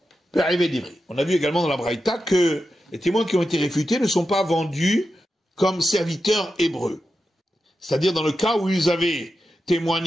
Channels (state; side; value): normal; both; correlation 0.90